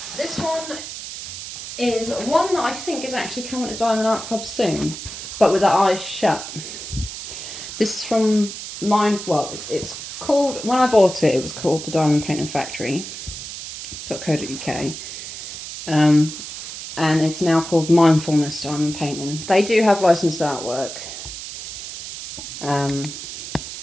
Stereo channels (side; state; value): right; noise; hiss, 9 dB below the sound